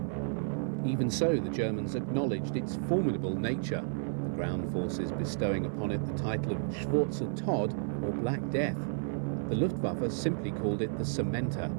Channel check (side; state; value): left; silent; digital silence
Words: Even so, the Germans acknowledged its formidable nature, the ground forces bestowing upon it the title of Schwarzer Tod, or Black Death. The Luftwaffe simply called it the Cementer,